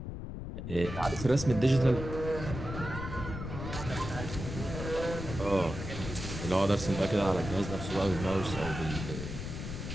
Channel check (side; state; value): left; noise; rumble, 7 dB below the sound